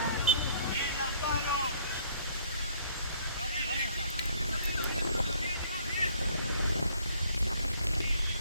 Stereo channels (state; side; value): inverted; both; correlation -0.60